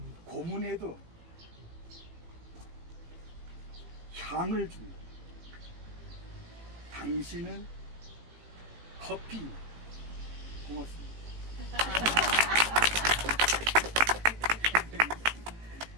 고문에도 향을 줍니다. 당신은 커피 고맙습니다.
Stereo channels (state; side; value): late; left; 18 ms